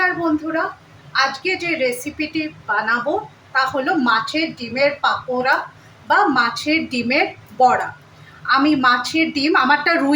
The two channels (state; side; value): identical; both; correlation 1.00